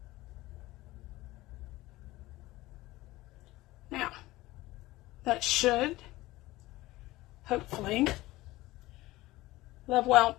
Now, that should hopefully level out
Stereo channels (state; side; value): quieter; right; 18.4 dB